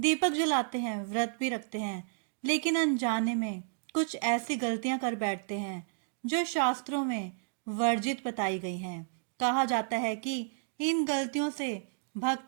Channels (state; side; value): silent; left; digital silence